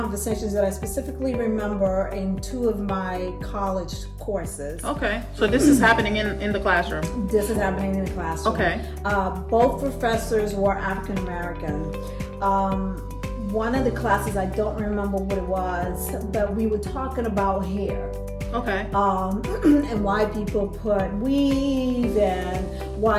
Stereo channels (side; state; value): both; identical; correlation 1.00